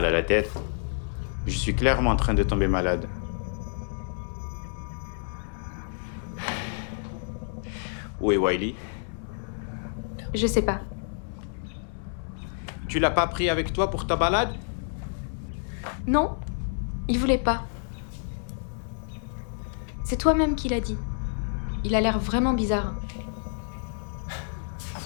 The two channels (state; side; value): silent; right; digital silence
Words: à la tête. Je suis clairement en train de tomber malade. Où est Wiley? Je sais pas. Tu l'as pas pris avec toi pour ta balade? Non, il voulait pas. C'est toi-même qui l'as dit. Il a l'air vraiment bizarre.